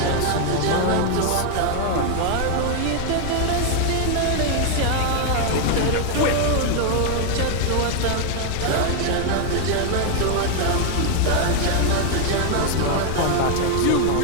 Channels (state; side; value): different; both; correlation 0.00